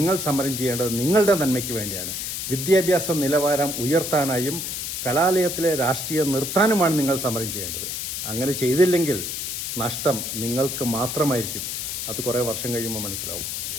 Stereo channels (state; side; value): noise; left; hiss, 4 dB below the sound